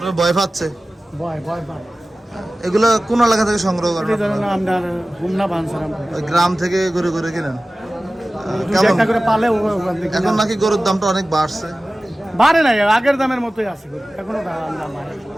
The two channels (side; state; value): both; normal; correlation 0.97